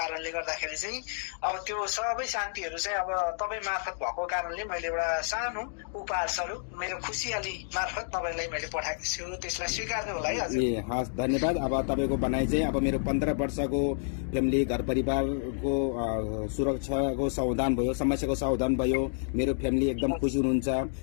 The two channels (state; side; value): silent; right; digital silence